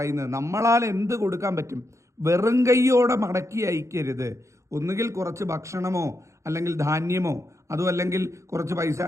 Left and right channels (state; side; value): late; left; 0.14 ms